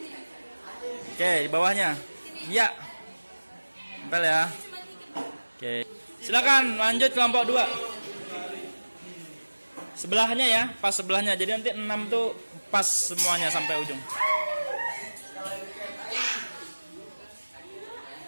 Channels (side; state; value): both; inverted; correlation -1.00